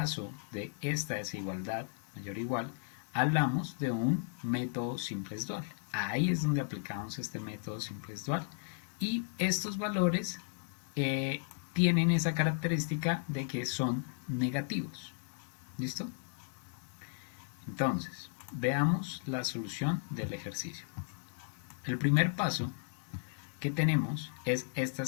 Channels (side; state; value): right; silent; 54 dB below the other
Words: de esta desigualdad mayor o igual, hablamos de un método simples dual. Ahí es donde aplicamos este método simples dual. Y estos valores tienen esa característica de que son negativos. ¿Listo? Entonces, veamos la solución del ejercicio. El primer paso que tenemos es esta